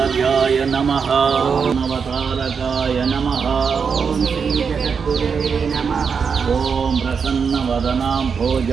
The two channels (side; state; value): left; quieter; 6.0 dB